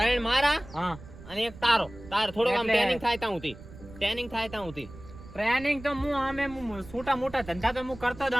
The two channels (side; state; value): right; noise; rumble, 17 dB below the sound